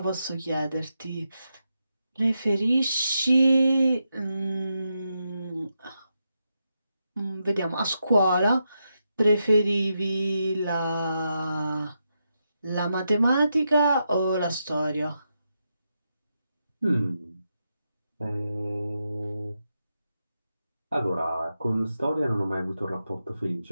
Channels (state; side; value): inverted; both; correlation -0.85